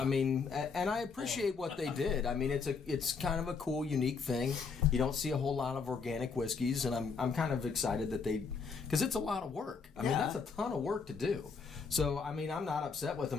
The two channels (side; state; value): right; quieter; 5.2 dB